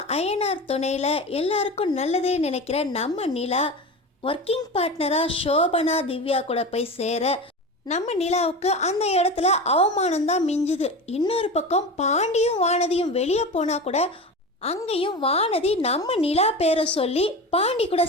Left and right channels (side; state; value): both; normal; correlation 0.28